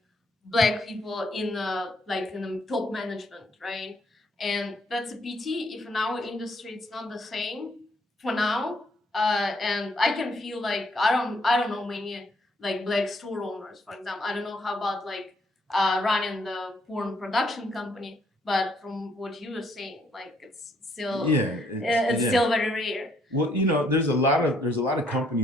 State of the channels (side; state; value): both; normal; correlation 0.70